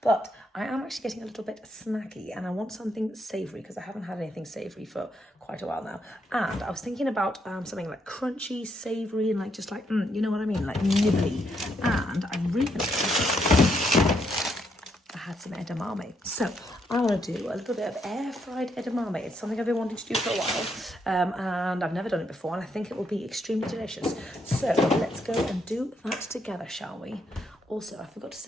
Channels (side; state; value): both; normal; correlation 0.76